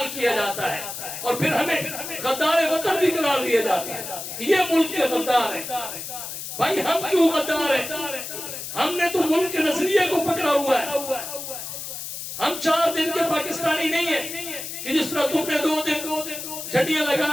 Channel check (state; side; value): noise; left; hiss, 8 dB below the sound